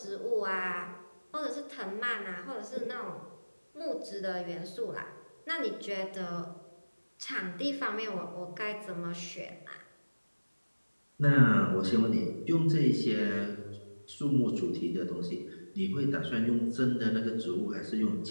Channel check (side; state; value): both; inverted; correlation -1.00